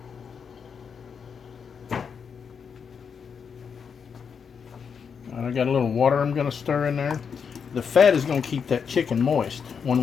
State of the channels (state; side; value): quieter; right; 6.5 dB